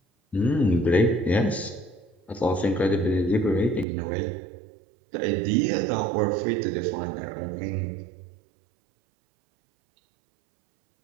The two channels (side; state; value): left; drops out; at 3.9 s